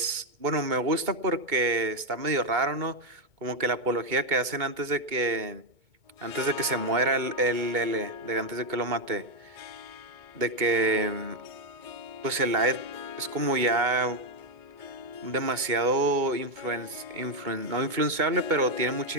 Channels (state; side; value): late; left; 2.2 ms